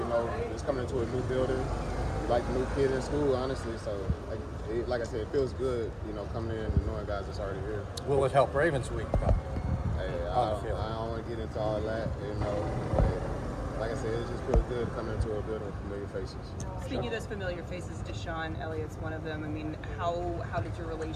know, just coming into a new building, like a new kid in school, honestly. So, like I said, it feels good. You know, coming in and knowing guys that's already here. Will it help Ravens week, though? Hey, I don't want to get into all that. You know, but like I said, it just feels good coming into a building with familiar faces. Speaking of those familiar faces, DeShon, Elliott's one of them. I mean, how did your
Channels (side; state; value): both; identical; correlation 1.00